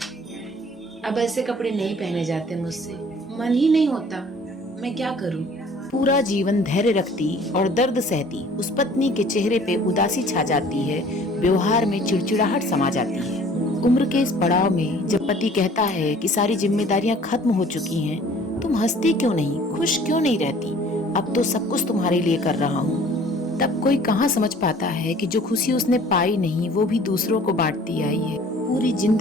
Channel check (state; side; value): normal; both; correlation 0.52